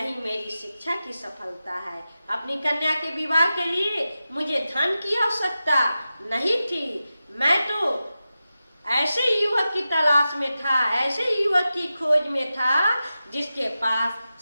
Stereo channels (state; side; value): inverted; both; correlation -0.93